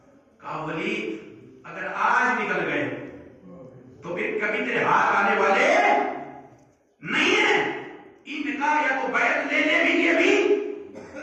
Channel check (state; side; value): identical; both; correlation 1.00